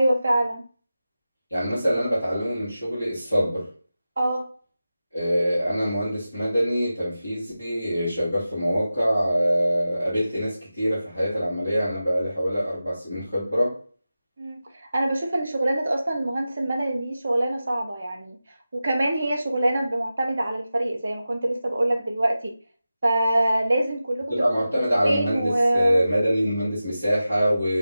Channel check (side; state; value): both; inverted; correlation -0.94